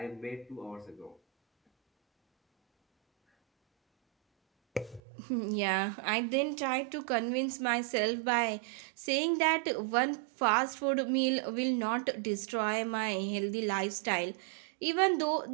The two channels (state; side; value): drops out; left; at 5.0 s